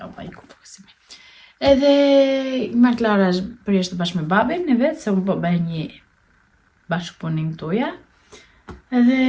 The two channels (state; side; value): identical; both; correlation 1.00